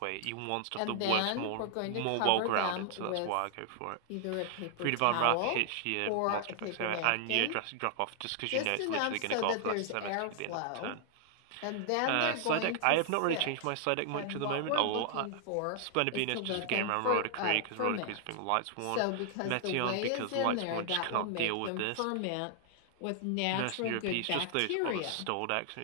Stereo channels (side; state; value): both; different; correlation 0.00